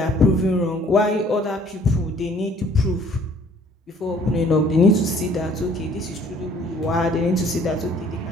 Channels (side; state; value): both; normal; correlation 0.58